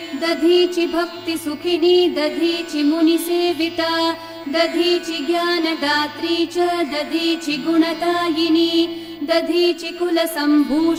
दधीचि भक्तिसुखिनी दधीचि मुनिसेविता दधीचि ज्ञानदात्री च दधीचि गुणदायिनी दधीचि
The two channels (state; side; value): identical; both; correlation 1.00